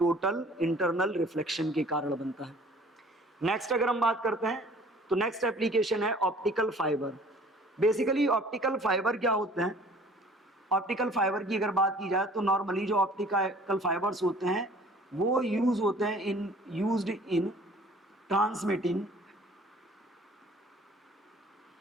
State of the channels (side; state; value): both; normal; correlation 0.51